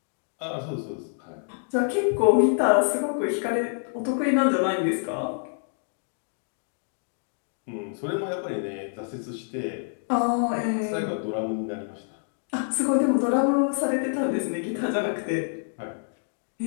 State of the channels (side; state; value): right; silent; digital silence